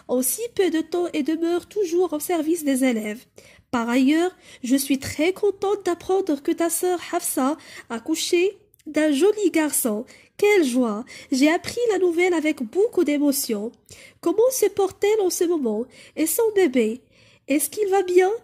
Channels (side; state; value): both; identical; correlation 1.00